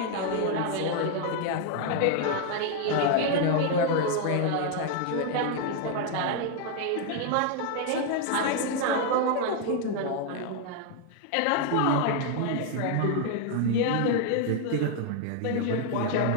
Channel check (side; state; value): both; different; correlation 0.00